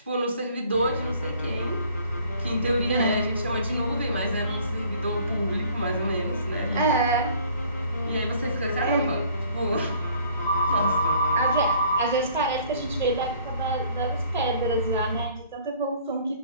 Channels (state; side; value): inverted; both; correlation -0.56